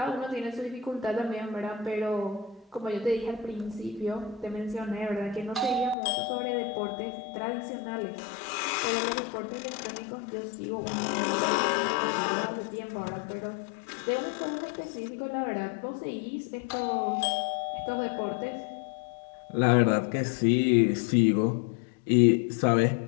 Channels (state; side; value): drops out; right; at 6.0 s